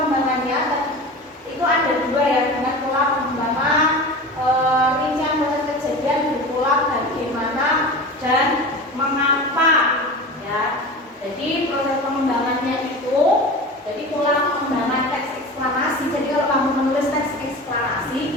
itu ada dua ya, dengan pola pengembangan rincian proses kejadian berpola bagaimana dan mengapa ya. Jadi proses pengembangannya itu, jadi pola pengembangan teks eksplanasi. Jadi kalau kamu menulis teks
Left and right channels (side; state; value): both; normal; correlation 0.32